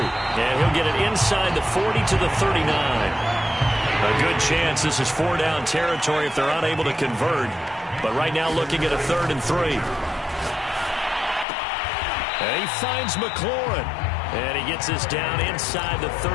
And he'll get it inside the 40 to the 39. A good chance this is 4-down territory if they're unable to convert. But right now looking at a 3rd and 3. And he finds McLaurin. And he gets this down inside the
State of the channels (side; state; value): right; drops out; at 11.5 s